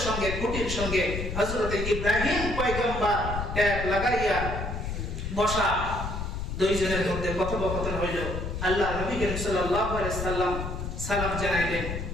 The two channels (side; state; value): left; noise; rumble, 4 dB below the sound